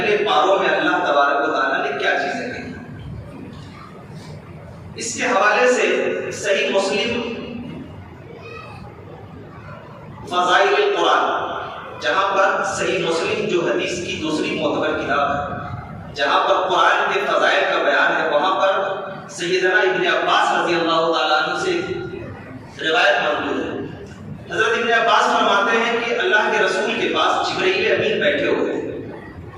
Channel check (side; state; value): both; identical; correlation 1.00